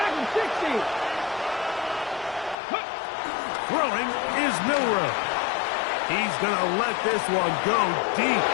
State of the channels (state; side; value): drops out; right; at 2.6 s